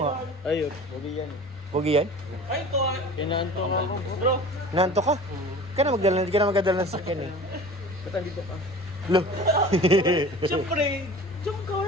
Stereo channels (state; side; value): normal; both; correlation 0.40